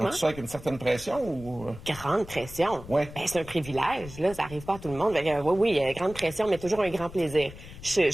Donc, tu sais, avec une certaine pression ou... Grande pression. Ouais. Ben, c'est un privilège, là. Ça arrive pas à tout le monde. Oui, grande pression, mais toujours un grand plaisir.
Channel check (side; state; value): left; noise; rumble, 15 dB below the sound